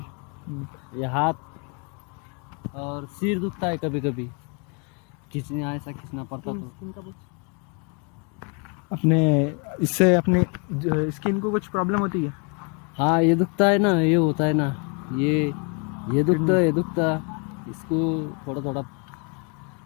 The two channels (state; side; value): quieter; right; 35.0 dB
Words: ये हाथ और सिर दुखता है कभी कभी, खींचने ऐसा खींचना पड़ता तो. अपने इससे अपने स्किन को कुछ प्रॉब्लम होती है? हाँ, ये दुखता है ना, ये होता है ना, ये दुखता है, ये दुखता, इसको थोड़ा